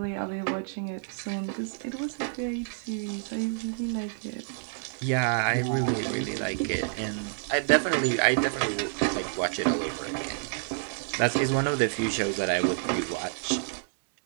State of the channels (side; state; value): left; silent; 59 dB below the other